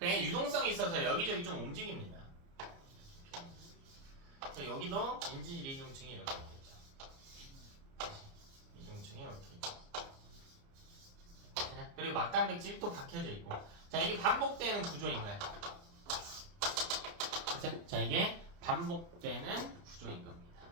유동성이 있어서 여기저기 좀 움직입니다. 여기도 인지질 이중층이 이렇게 있겠죠. 이중층이 이렇게 있죠. 그리고 막단백질이 또 박혀져 있고. 자, 이게 반복되는 구조인 거야. 자, 이게 반복되는 구조인 겁니다.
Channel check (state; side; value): late; left; 29 ms